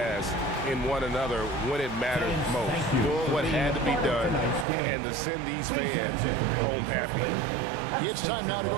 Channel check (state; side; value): drops out; left; at 4.7 s